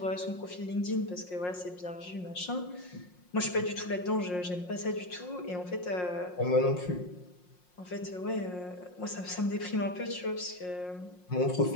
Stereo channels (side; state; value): right; late; 5.6 ms